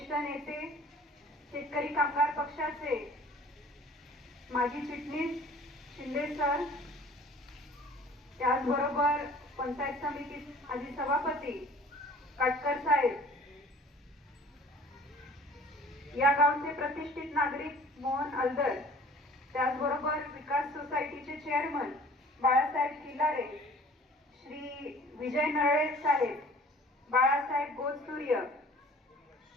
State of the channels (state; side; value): normal; both; correlation 0.48